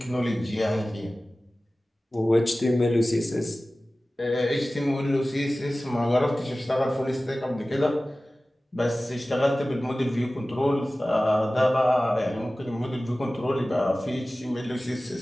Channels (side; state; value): both; normal; correlation 0.97